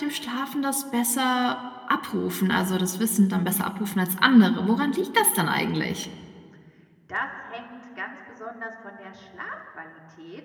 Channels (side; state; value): both; identical; correlation 1.00